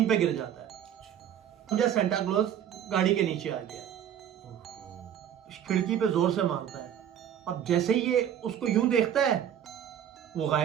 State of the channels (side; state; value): left; quieter; 9.8 dB